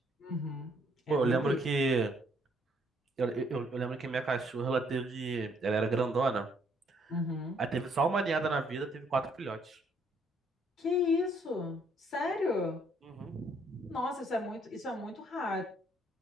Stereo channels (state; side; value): normal; both; correlation 0.67